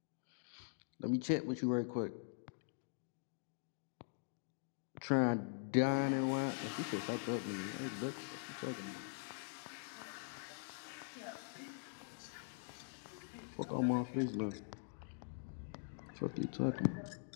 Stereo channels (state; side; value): silent; right; digital silence